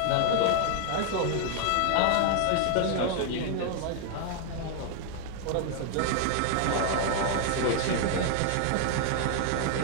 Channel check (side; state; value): both; different; correlation 0.00